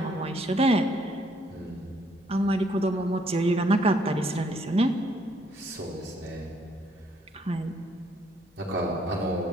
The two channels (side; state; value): both; normal; correlation 0.68